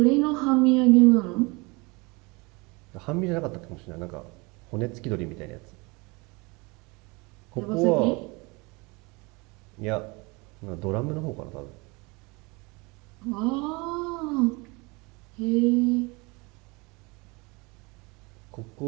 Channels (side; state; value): left; quieter; 26.7 dB